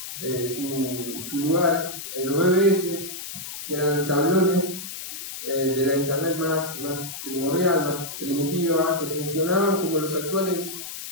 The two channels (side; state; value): left; noise; hiss, 9 dB below the sound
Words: su lugar en los BBS, que eran tablones de la internet más primordial, más primitiva, que funcionaban como los actuales